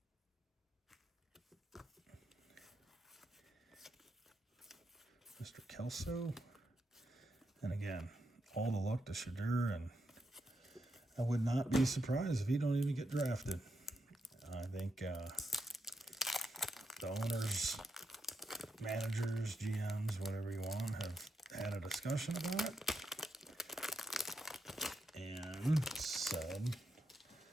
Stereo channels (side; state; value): both; normal; correlation 0.83